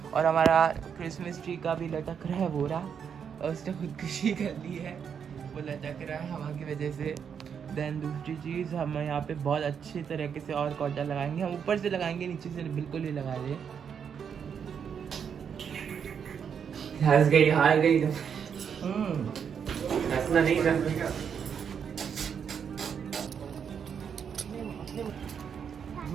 और हमारा क्रिसमस ट्री का भी लटक रहा है बोरा, और उसने खुदकुशी कर ली है, वो लटक रहा है हवा की वजह से। देन दूसरी चीज़, हम यहाँ पे बहुत अच्छे तरीके से और कॉटन लगाएंगे, हम ऊपर से लगाएंगे, नीचे से बिल्कुल ही लगा रहे। हंस गई, हार गई तो हंसना नहीं था।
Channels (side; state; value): left; quieter; 7.3 dB